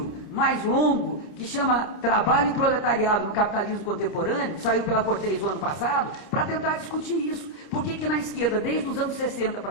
mais longo, que chama Trabalho e Proletariado no Capitalismo Contemporâneo, que saiu pela Cortez o ano passado, para tentar discutir isso. Por que na esquerda, desde os anos 60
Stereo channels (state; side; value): late; right; 29 ms